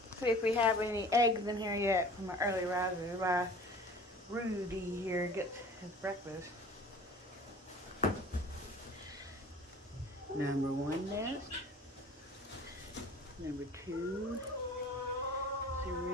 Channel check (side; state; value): both; normal; correlation 0.45